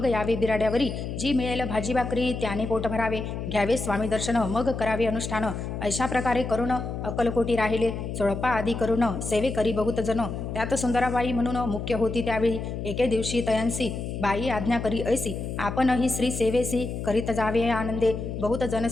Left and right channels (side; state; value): left; noise; hum, 5 dB below the sound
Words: यावे बिराड्यावरी जी मिळेल भाजी भाकरी त्याने पोट भरावे घ्यावे स्वामी दर्शन मग करावे अनुष्ठान. अशा प्रकारे करून अकलकोटी राहिले चोळपा आदी करून सेवे करी बहुत जन त्यात सुंदराबाई म्हणून मुख्य होती. त्यावेळी एके दिवशी तयांसी बाई आज्ञा करी ऐसी आपणही श्री सेवेसी करीत जावे आनंदे बहुत जन